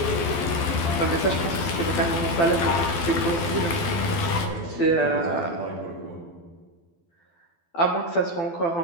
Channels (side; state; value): right; late; 12 ms